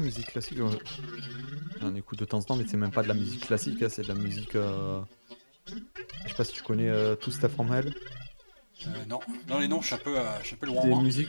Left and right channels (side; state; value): both; inverted; correlation -1.00